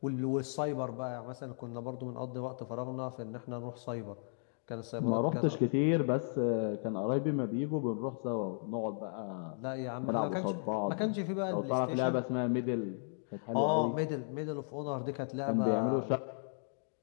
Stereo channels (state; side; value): silent; right; digital silence